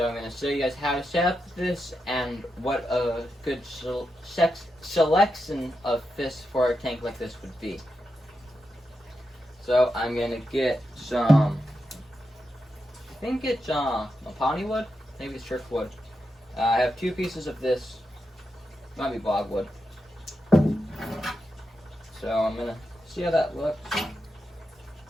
I'm going to show you guys how to set up this and what a good selection of fish for a tank like this would be. So I'm going to get some, I think it's mapani wood, maybe it's driftwood. I have 2 pieces of this, might be bogwood. So I'm gonna see how that looks.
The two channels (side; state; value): both; normal; correlation 0.87